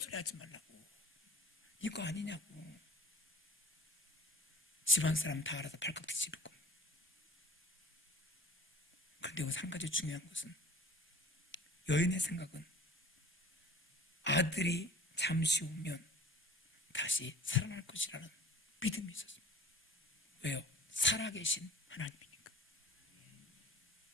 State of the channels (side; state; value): both; normal; correlation 0.46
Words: 소리 하지 말라고. 이거 아니냐고. 집안 사람 다 알아서 발칵 뒤집을 겁니다. 그런데 여기서 한 가지 중요한 것은, 여인의 생각은 아들이 잠시 후면 다시 살아날 것이라는 믿음이 있었습니다. 왜요? 살아계신 하나님이니까.